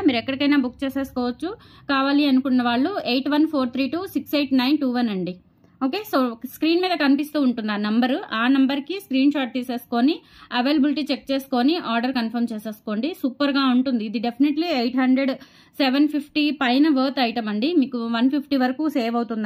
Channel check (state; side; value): identical; both; correlation 1.00